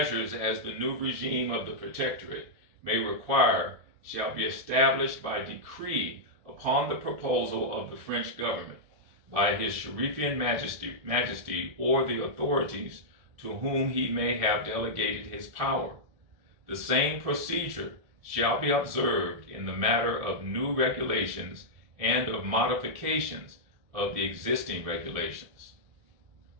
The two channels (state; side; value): late; left; 1.7 ms